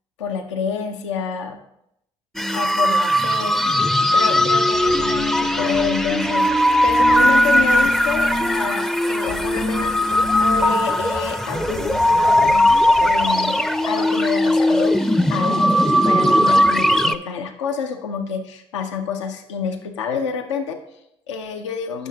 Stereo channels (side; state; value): both; normal; correlation 0.86